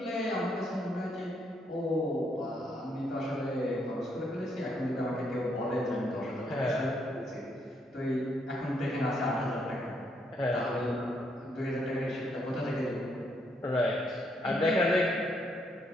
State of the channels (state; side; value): normal; both; correlation 0.74